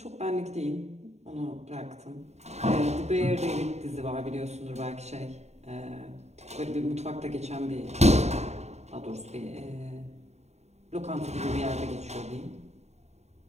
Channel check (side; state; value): left; late; 0.32 ms